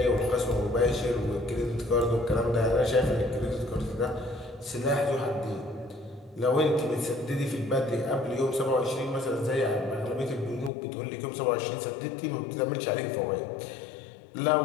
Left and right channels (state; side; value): drops out; right; at 10.7 s